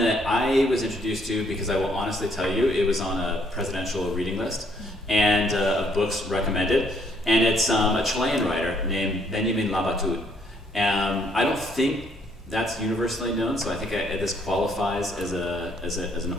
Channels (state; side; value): normal; both; correlation 0.67